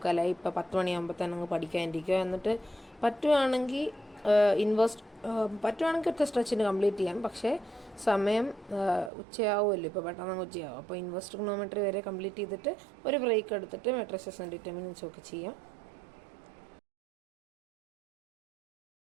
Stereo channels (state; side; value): drops out; left; at 9.1 s